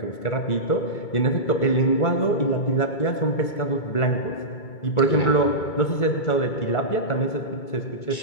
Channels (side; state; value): right; late; 2.2 ms